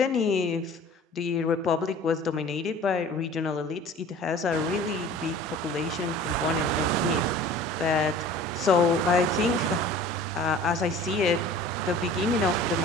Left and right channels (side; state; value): both; normal; correlation 0.45